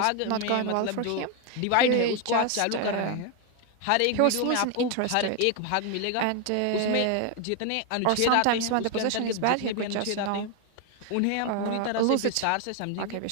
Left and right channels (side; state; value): both; different; correlation 0.01